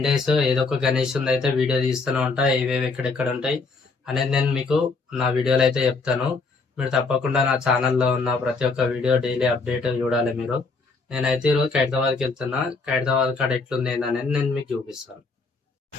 days ఏదో ఒక గణేష్ అయితే వీడియో తీస్తూనే ఉంటా. ఏవేవి ఎక్కడెక్కడ ఉంటాయి అనేది నేను మీకు నా వీడియోలో అయితే చెప్తాను. మీరు తప్పకుండా నా ఛానల్లో ఉన్న ప్రతి ఒక్క వీడియో డైలీ అప్డేట్ చూడాలి మీరు. నేనైతే ఈరోజు ఖైరతాబాద్కి వెళ్తున్నా. ఖైరతాబాద్ కాడ ఎట్లుంది ఏందనేది నేను మీకు చూపిస్తాను.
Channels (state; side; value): quieter; right; 4.1 dB